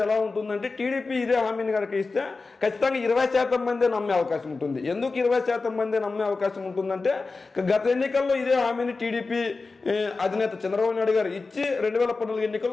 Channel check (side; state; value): right; quieter; 3.9 dB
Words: ఎలా ఉంటుందంటే, టీడీపీ ఇదే హామీని కనుక ఇస్తే ఖచ్చితంగా 20% మందే నమ్మే అవకాశం ఉంటుంది. ఎందుకు 20% మందే నమ్మే అవకాశం ఉంటుందంటే, గత ఎన్నికల్లో ఇదే హామీని టీడీపీ అధినేత చంద్రబాబు నాయుడు గారు ఇచ్చి 2014